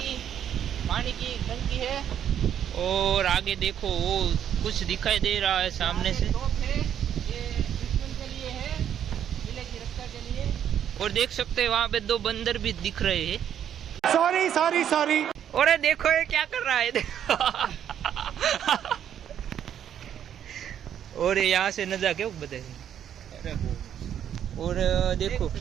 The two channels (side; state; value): left; quieter; 9.6 dB